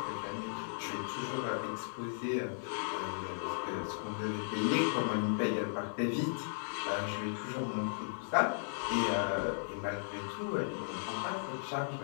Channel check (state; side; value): silent; right; digital silence